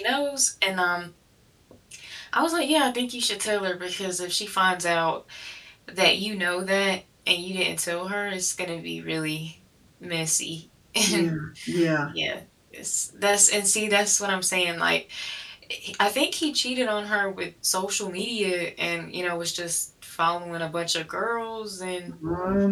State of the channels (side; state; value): both; identical; correlation 1.00